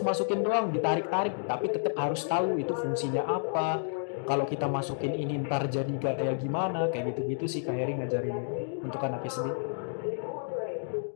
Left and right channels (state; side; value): silent; right; digital silence